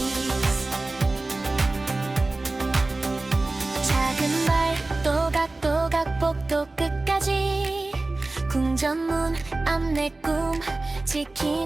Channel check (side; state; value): left; quieter; 3.1 dB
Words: 작은 발 또각또각 복도 끝까지 궁전문 앞 내 꿈